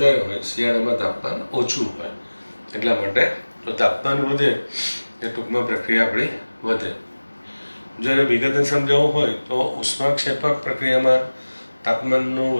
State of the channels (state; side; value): inverted; both; correlation -1.00